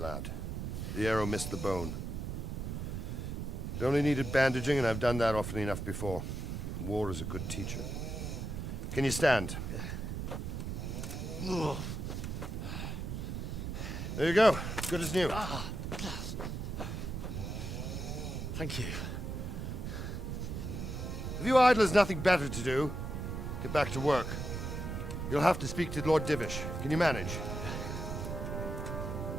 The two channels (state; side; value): noise; right; rumble, 4 dB below the sound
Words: The arrow missed the bone. It only needed bandaging, and I've done that often enough before. War is a good teacher. Can you stand? There you go. Good as new. Thank you. If you idlers nothing better to do, get back to work. You'll have to speak to Lord Divish. Can you manage?